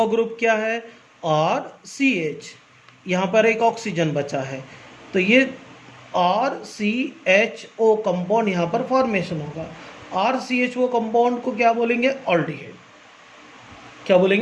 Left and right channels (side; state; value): both; identical; correlation 1.00